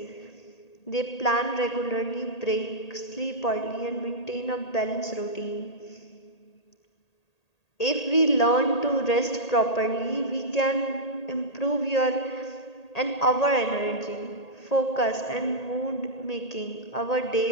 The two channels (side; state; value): right; late; 1.8 ms